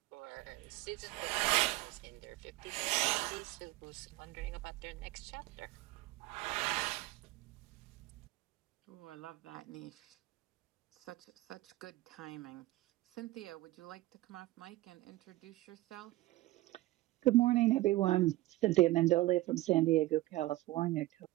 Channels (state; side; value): quieter; left; 18.1 dB